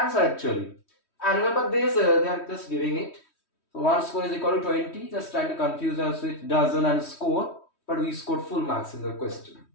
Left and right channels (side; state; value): right; late; 3.1 ms